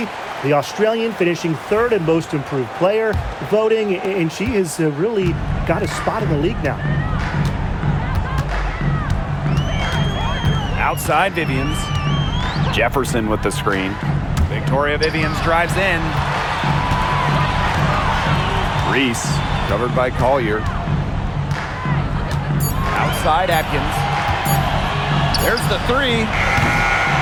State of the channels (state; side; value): identical; both; correlation 1.00